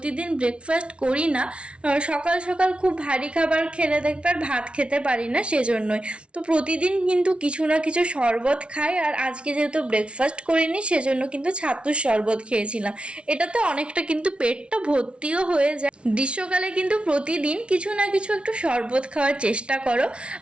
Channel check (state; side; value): late; left; 0.059 ms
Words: ব্রেকফাস্ট করি না। সকাল সকাল খুব ভারী খাবার খেলে দেখবে আর ভাত খেতে পারি না, সেজন্যই। তো প্রতিদিন কিন্তু কিছু না কিছু শরবত খাই, আর আজকে যেহেতু ব্রেকফাস্ট করিনি সেজন্য কিন্তু ছাতুর শরবত খেয়েছিলাম। এটাতে অনেকটা কিন্তু পেটটা ভর্তিও হয়ে যায়। গ্রীষ্মকালে কিন্তু প্রতিদিন কিছু না কিছু একটু শরবত খাওয়ার চেষ্টা করো।